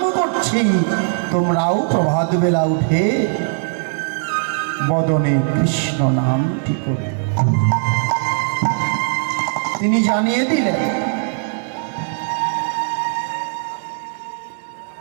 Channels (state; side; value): silent; left; digital silence